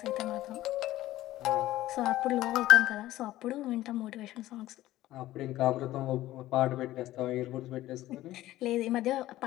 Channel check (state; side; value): quieter; right; 15.4 dB